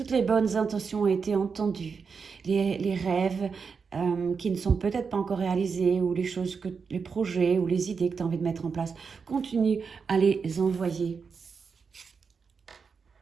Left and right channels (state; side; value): quieter; left; 5.5 dB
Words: les bonnes intentions ont été entendues, les rêves qui ne sont peut-être pas encore réalisés ou les projets ou les idées que tu as envie de mettre en place, continue à les envoyer.